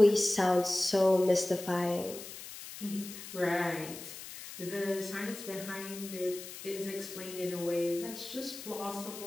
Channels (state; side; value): noise; left; hiss, 12 dB below the sound